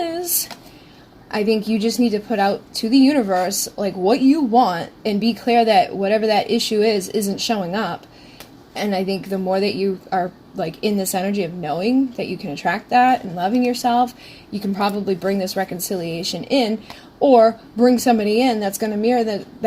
I think you just need to put out to the universe, like, what you want, and be clear that whatever that issue is isn't showing up. And I think the more that you are, like, in this energy of knowing that you can attract that and loving yourself, you can probably bring this reconciliation in, or bring somebody in that's going to mirror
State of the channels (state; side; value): identical; both; correlation 1.00